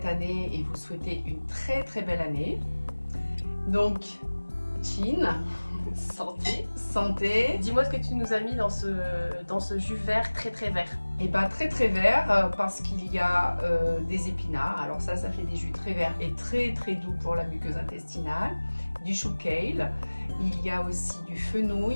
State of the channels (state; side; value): inverted; both; correlation -1.00